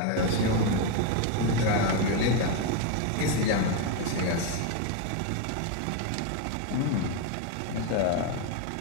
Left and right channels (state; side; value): different; both; correlation 0.02